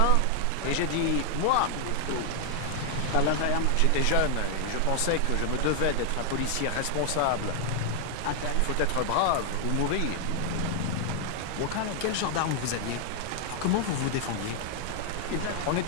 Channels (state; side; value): different; both; correlation 0.00